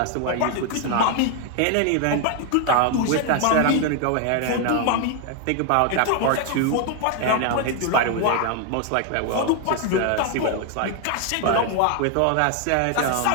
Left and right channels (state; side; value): different; both; correlation 0.00